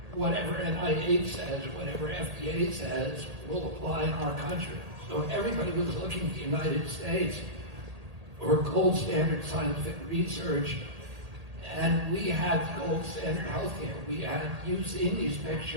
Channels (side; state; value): left; late; 1.8 ms